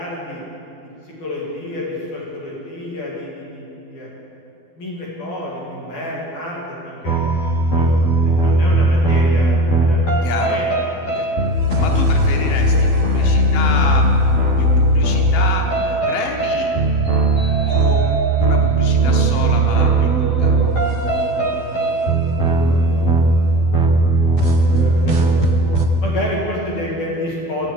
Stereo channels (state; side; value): late; right; 12 ms